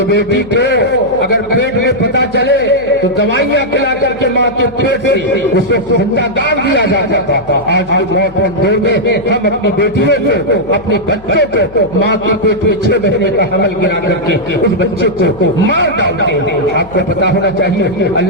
بیٹی کو اگر پیٹ میں پتہ چلے تو دوائیاں کھلا کر کے ماں کے پیٹ سے اس کو زندہ گاڑ دیا جاتا تھا۔ آج کے ماڈرن دور میں ہم اپنی بیٹیوں کو، اپنے بچوں کو ماں کے پیٹ میں 6 مہینے کا حمل گرا کر کے اس بچے کو مار ڈالتے ہیں۔ آپ کو پتا ہونا چاہیے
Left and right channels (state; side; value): noise; left; hum, 21 dB below the sound